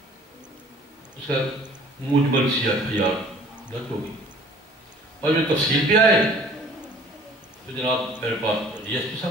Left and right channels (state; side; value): normal; both; correlation 0.51